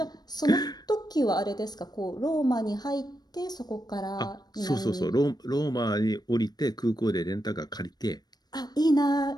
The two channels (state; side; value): late; right; 0.19 ms